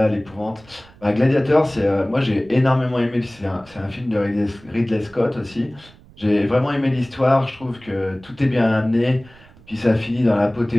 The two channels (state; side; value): noise; right; rumble, 25 dB below the sound